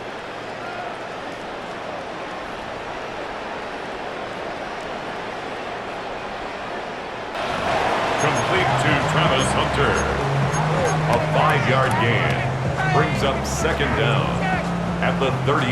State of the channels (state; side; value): identical; both; correlation 1.00